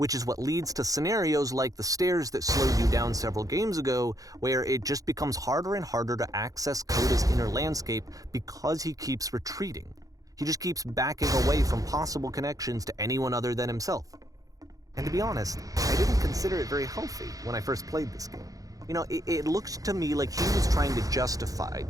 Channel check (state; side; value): late; left; 0.17 ms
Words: is what leads to scenarios like the stairs that slowed you down several games ago, where it just becomes harder and harder to access Coda's inner landscape because he keeps retreating. He just keeps backing away from possible connections to anyone other than himself. And to be honest, I didn't consider it very healthy when I first played this game. It looked to me like he was trying to justify